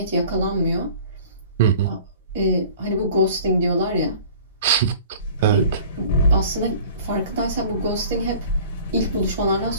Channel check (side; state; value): both; inverted; correlation -0.46